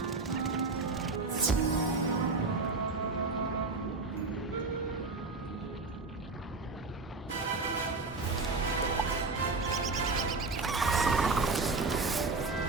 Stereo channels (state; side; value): quieter; left; 3.8 dB